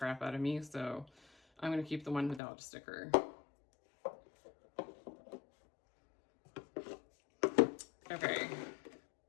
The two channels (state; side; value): drops out; right; at 2.4 s